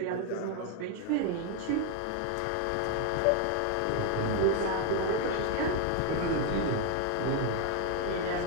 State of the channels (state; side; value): different; both; correlation 0.00